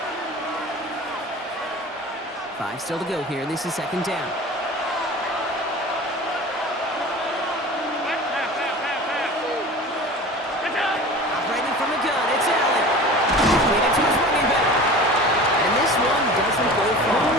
Five still to go here. This is second down. Operating from the gun, it's Allen. Leading to his running back. And this one doesn't go far.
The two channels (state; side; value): normal; both; correlation 0.37